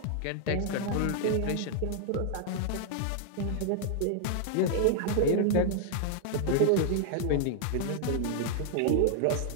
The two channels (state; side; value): different; both; correlation 0.00